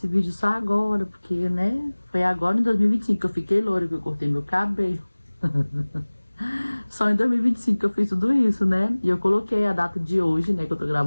vídeo só agora? Porque, né, foi agora em 2025 que eu fiquei loura, que eu cortei meu cabelo. Só em 2025 que eu fiz tudo isso, né? E eu coloquei a data de hoje, né? Que eu tô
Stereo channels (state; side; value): inverted; both; correlation -1.00